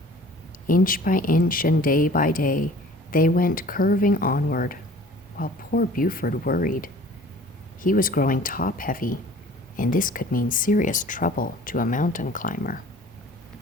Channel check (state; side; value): normal; both; correlation 0.48